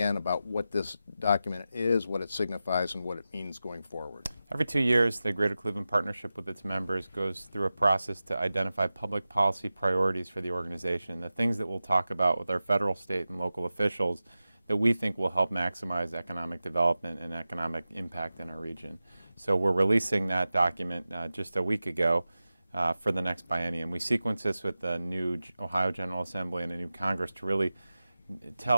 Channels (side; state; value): both; inverted; correlation -0.94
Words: about what this document is, what it signifies, and what it means going forward. Every 2 years, the Greater Cleveland Partnership with its members goes through a process to identify public policy priorities for the organization, the things that we'll talk about with our federal, state, and local officials that we think will help maximize economic development and economic impact in our region. So we're releasing that document just a week ago for the next biennium. We sequence this with the new Ohio General Assembly and a new Congress to really